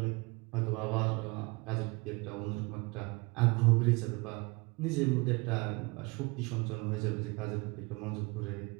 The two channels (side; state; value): left; quieter; 27.1 dB